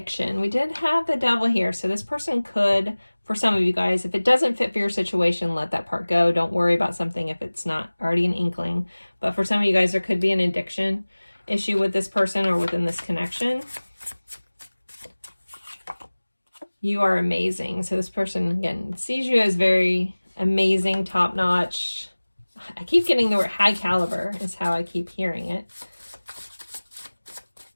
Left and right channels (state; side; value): inverted; both; correlation -1.00